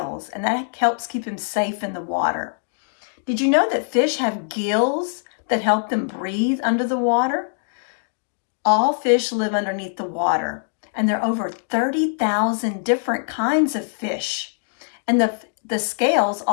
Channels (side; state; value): right; silent; digital silence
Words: and that helps keep him safe in the water. Did you know that fish have gills that help them breathe under the water? All fish live underneath the water, and there are over 30,000 different kinds of fish. And the scales